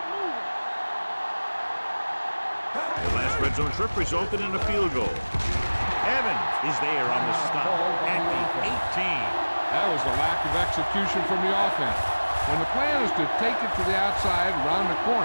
The last red zone trip resulted in a field goal. Evans is there on the stop at the 18. That was a lack of execution from the offense. When the plan is to take it to the outside, around the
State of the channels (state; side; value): inverted; both; correlation -1.00